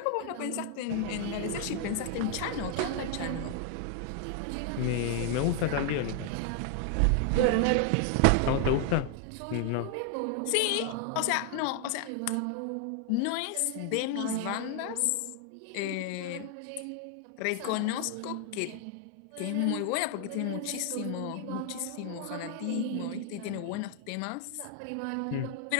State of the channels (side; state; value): both; different; correlation 0.00